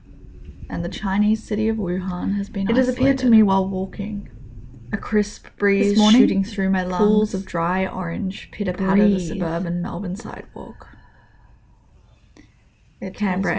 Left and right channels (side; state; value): both; identical; correlation 1.00